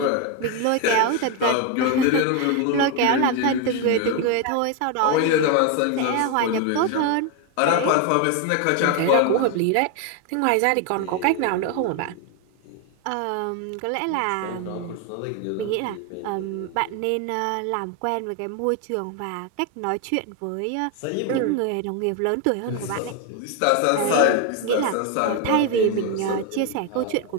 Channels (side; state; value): both; different; correlation 0.01